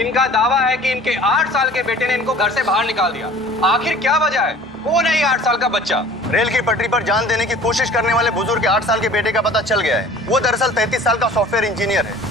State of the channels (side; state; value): both; normal; correlation 0.47